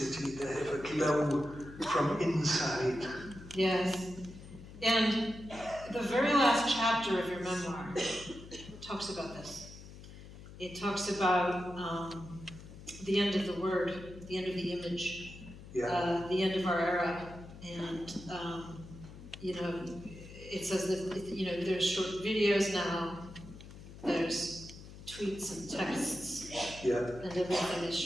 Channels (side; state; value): left; noise; hum, 15 dB below the sound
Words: They have a glow from inside. Yes. And the very last chapter of your memoir talks about this. It talks about the end of the word, the end of the image, Yeah. the end of our era, and it says that there's short videos now, there's tweets and texts, Yeah. and everything is